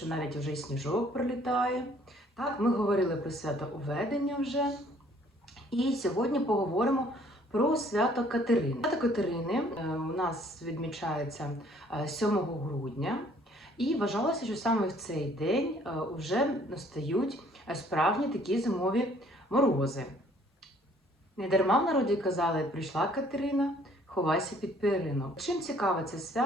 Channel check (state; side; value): normal; both; correlation 0.59